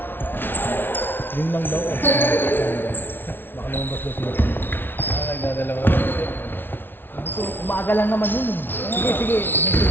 Yun lang daw. Baka lumabas daw sila. Nagdadalawa. Umaga lang naman yun. Sige, sige.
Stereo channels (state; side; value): late; right; 0.10 ms